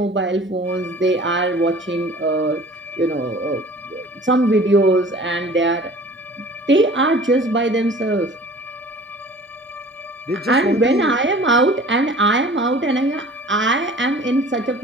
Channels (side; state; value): both; normal; correlation 0.46